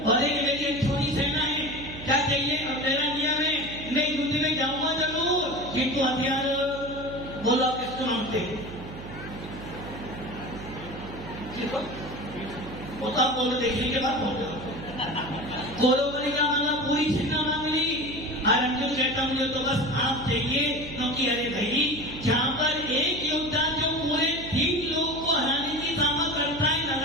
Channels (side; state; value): right; noise; hum, 12 dB below the sound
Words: और एक मेरी एक छोटी सेना है, क्या चाहिए? और मेरा नियम है मैं युद्ध में जाऊंगा जरूर, किंतु हथियार बोलो आप किसको मांगते? होता बोलो, देखने के बाद बोलो। कौरवों ने क्या मांगा? पूरी सेना मांग ली। और अर्जुन कहता मुझे तो बस आप चाहिए, क्योंकि अरे भाई जहां पर एक योद्धा जो पूरे 3 लोगों को हराने की सामर्थ करता है,